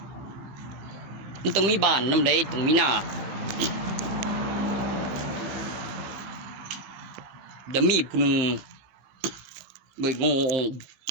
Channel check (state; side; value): late; left; 15 ms